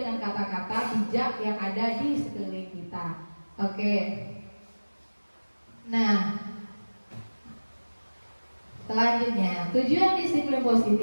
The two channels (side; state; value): both; inverted; correlation -1.00